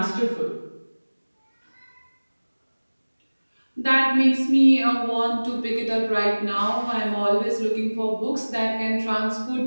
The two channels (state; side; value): inverted; both; correlation -1.00